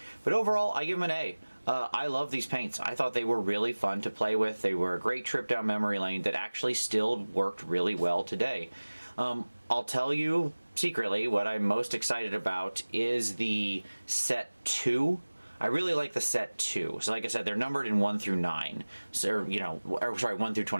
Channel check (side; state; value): both; inverted; correlation -1.00